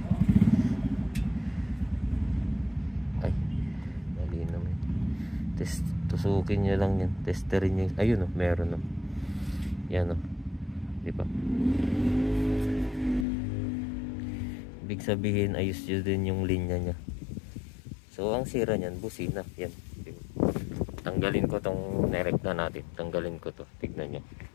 Ay, mali naman. Tusukin nyo lang yan. Testerin nyo. Ayun o, meron o. Yan o. Diba? Ibig sabihin, ayos nyo din yung linya nya. So, ang sira nyan, busina. Yan. Tanggalin ko tong nerek na natin. Tanggalin ko to. Tignan nyo.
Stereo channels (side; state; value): right; drops out; at 13.2 s